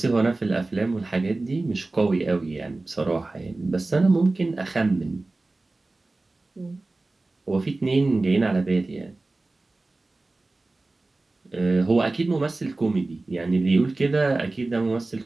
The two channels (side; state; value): left; quieter; 3.2 dB